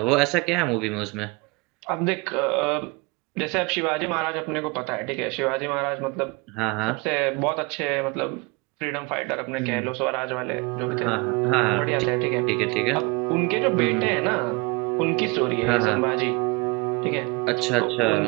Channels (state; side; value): quieter; left; 26.2 dB